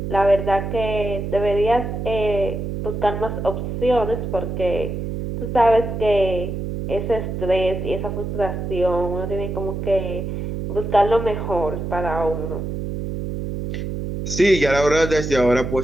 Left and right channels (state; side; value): noise; right; hum, 4 dB below the sound